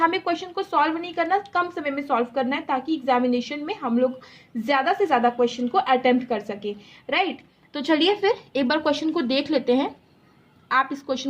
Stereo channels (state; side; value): identical; both; correlation 1.00